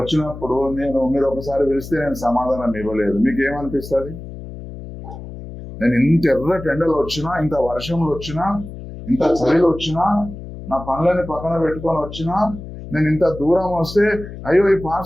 మీరు ఒకసారి పిలిస్తే నేను సమాధానం ఇవ్వలేదు, మీకు ఏమనిపిస్తుంది? నేను ఇంత ఎర్రటి ఎండలు వచ్చినా, ఇంత వర్షంలో వచ్చినా, ఇంత చలిలో వచ్చినా, నా పనులని పక్కన పెట్టుకొని వచ్చినా, నేను ఇంత దూరం వస్తే అయ్యో ఈ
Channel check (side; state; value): left; noise; hum, 12 dB below the sound